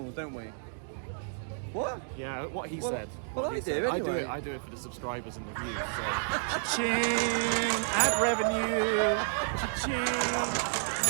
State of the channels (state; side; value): silent; left; digital silence